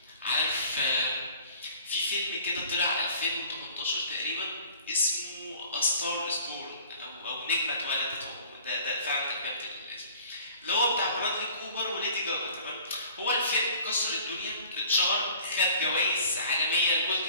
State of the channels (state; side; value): inverted; both; correlation -0.49